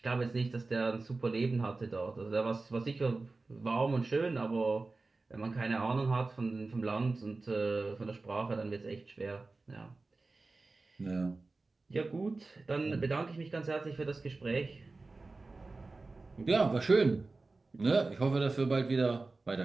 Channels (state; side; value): quieter; left; 3.5 dB